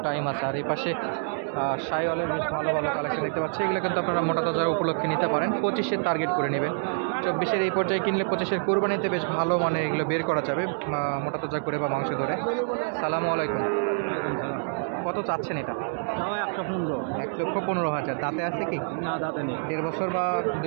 টাইম আছে। আর এই পাশে শাইওয়ালের বেশ ভালো ভালো কালেকশন দেখতে পাচ্ছি। এগুলো কিন্তু আপনারা মোটা তাজার উপলক্ষে নিতে পারেন। 25-এর টার্গেট করে নেবেন। 24-এর এই পর্যায়ে কিনলে 25-এর কোরবানিতে বেশ ভালো মানে এগুলো বের করা যাবে মোটা তাজা করে বা মাংস ধরে। সালামু আলাইকুম। কত চাচ্ছেন এটা? 115। 1,15,000। দাঁতে আছে কি? না, দাঁতে নেই। 1.5 বছর বা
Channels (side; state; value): left; silent; digital silence